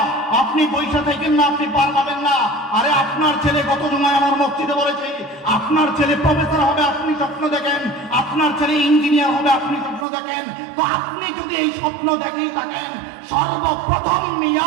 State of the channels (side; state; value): left; drops out; at 10.1 s